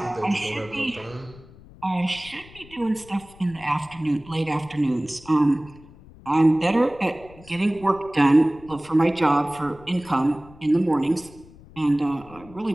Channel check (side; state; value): left; noise; rumble, 22 dB below the sound